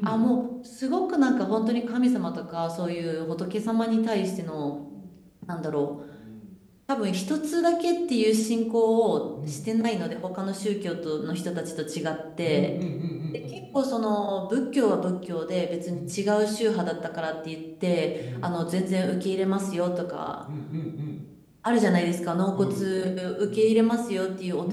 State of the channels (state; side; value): identical; both; correlation 1.00